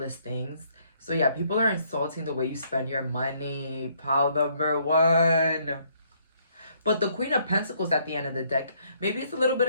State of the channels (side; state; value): both; inverted; correlation -0.68